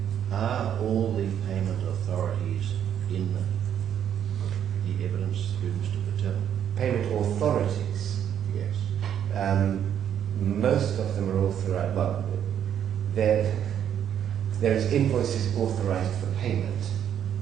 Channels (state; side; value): quieter; left; 9.4 dB